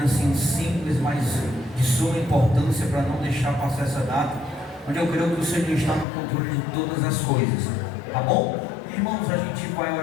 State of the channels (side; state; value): right; drops out; at 6.1 s